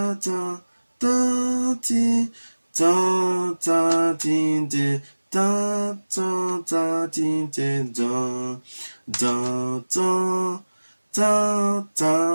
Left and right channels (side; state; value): both; inverted; correlation -1.00